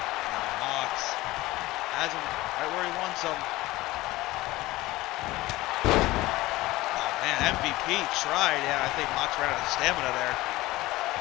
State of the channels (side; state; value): right; quieter; 18.6 dB